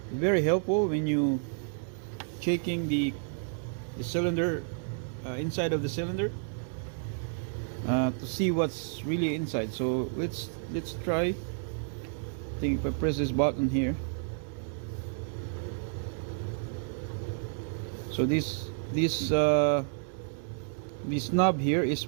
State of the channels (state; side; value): silent; left; digital silence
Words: It's very helpful when you checking the cylinder, inside of the cylinder, to see what's really inside. So let's try. I think if I press this button here, so this knob here is